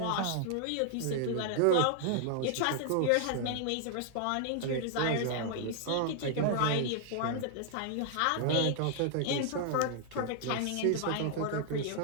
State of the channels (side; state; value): both; different; correlation 0.00